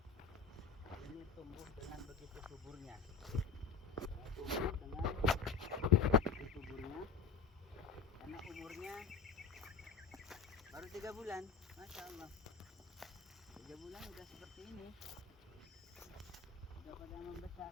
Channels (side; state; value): right; quieter; 5.2 dB